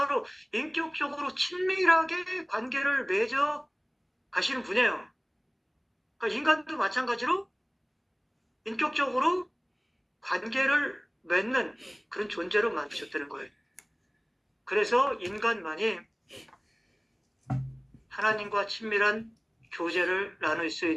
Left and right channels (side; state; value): both; identical; correlation 1.00